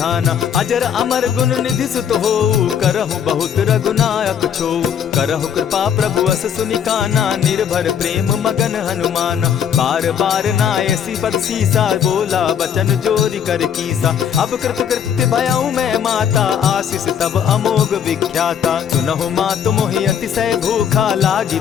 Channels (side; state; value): right; quieter; 8.4 dB